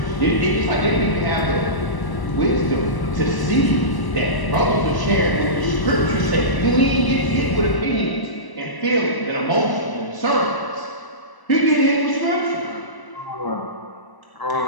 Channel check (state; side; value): late; right; 1.0 ms